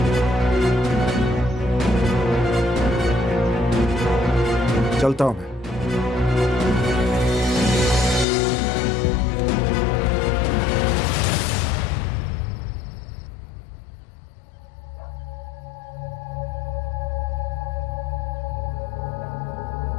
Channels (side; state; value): right; drops out; at 8.2 s